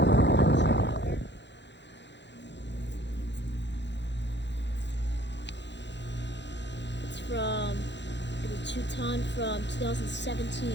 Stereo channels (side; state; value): right; late; 0.52 ms